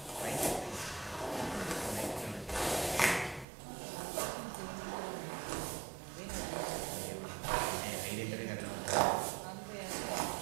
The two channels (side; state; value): left; drops out; at 3.5 s